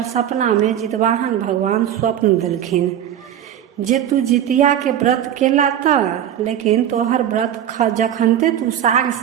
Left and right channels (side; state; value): left; quieter; 10.4 dB